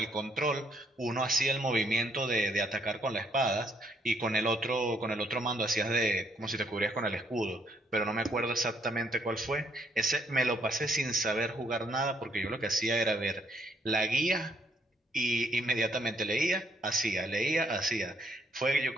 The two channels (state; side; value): normal; both; correlation 0.70